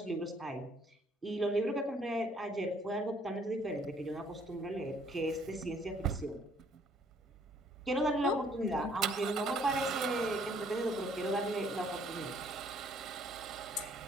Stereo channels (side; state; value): both; normal; correlation 0.63